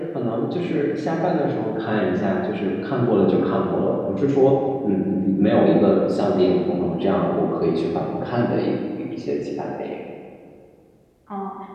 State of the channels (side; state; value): both; identical; correlation 1.00